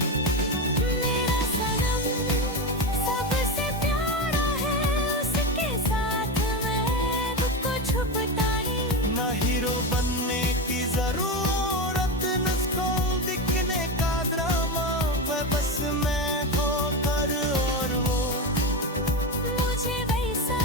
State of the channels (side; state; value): both; normal; correlation 0.17